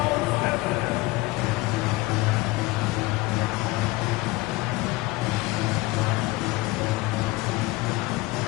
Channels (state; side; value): quieter; right; 21.0 dB